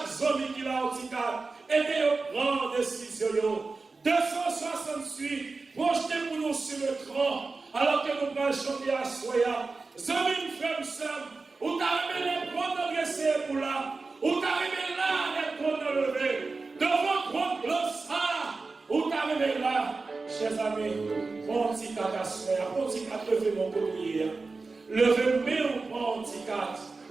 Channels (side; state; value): left; quieter; 3.9 dB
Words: zone qui l'a handicap. Aidez au prendre décision. 268. Projetez pour nous sur le tronc. Alors que nous allons chanter à Soya. Zami, frère, sœur. Où t'arrivez les prendre adressés pour là. Où t'arrivez là, les prendre lever. Devant prendre le sang. Où t'arrivez là, chers amis. Bon petit carte à Soya. Bon petit carte, levez mon collier. Levez mon petit carte.